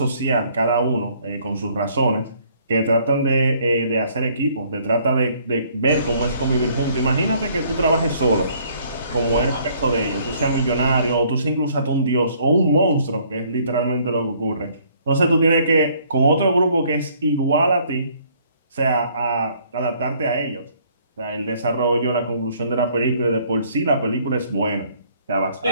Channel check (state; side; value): inverted; both; correlation -0.63